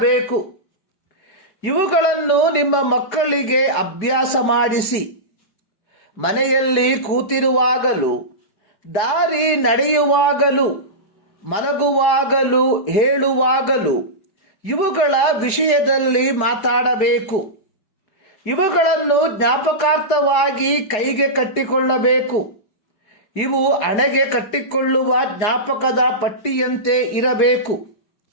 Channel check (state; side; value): late; right; 4.8 ms